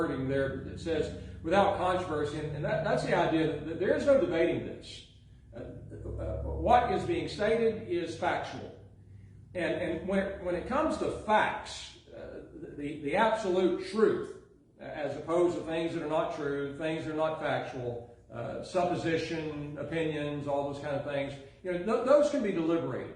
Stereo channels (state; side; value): identical; both; correlation 1.00